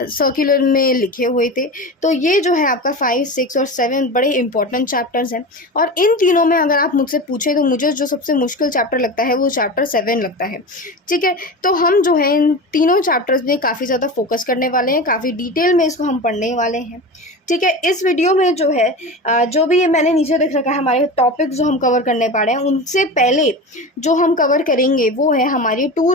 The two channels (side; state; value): both; normal; correlation 0.28